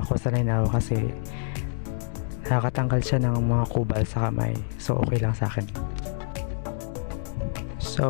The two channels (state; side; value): silent; right; digital silence